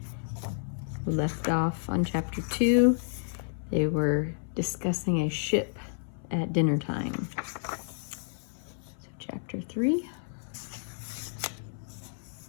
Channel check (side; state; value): right; silent; 57 dB below the other